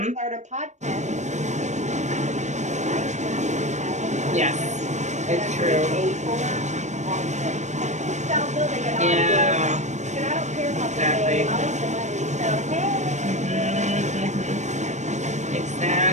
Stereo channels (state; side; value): late; left; 0.34 ms